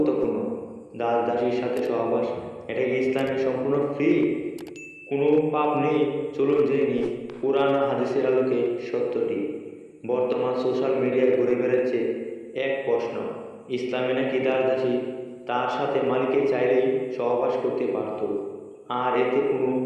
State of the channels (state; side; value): identical; both; correlation 1.00